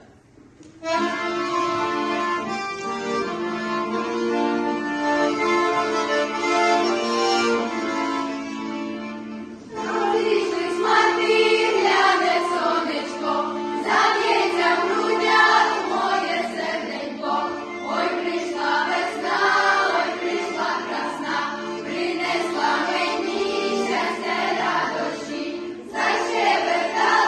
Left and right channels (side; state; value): both; identical; correlation 1.00